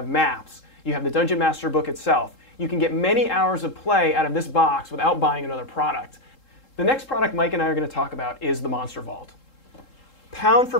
maps, you have the Dungeon Master book itself. You can get many hours of play out of this box without buying another product. The next product Mike and I are going to talk about is the Monster Vault. Pound for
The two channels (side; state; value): right; late; 3.7 ms